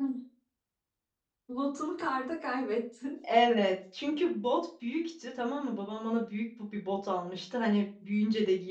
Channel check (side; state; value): both; identical; correlation 1.00